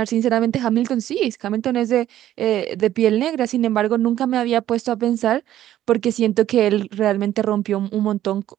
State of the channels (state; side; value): quieter; left; 12.5 dB